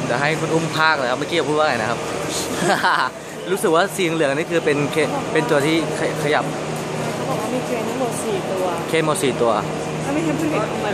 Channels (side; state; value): both; identical; correlation 1.00